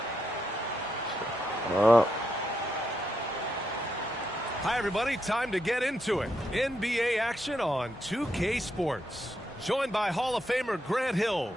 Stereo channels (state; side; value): normal; both; correlation 0.82